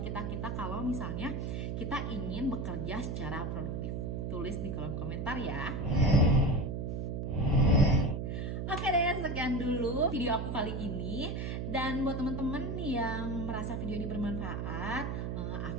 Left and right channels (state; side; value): noise; right; hum, 2 dB below the sound